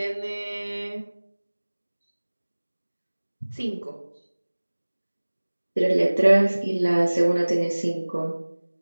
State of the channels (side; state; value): both; inverted; correlation -1.00